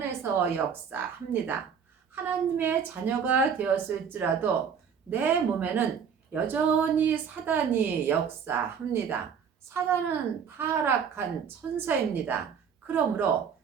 역사합니다. 하나님의 자녀가 되었을지라도 내 몸에는 여전히 사단이 역사합니다. 사단은 타락한 천사입니다. 그러므로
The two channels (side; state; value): left; quieter; 7.0 dB